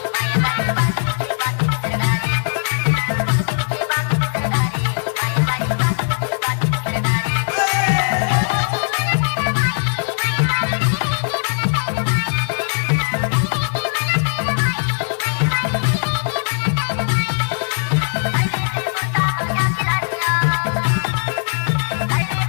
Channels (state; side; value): silent; right; 56 dB below the other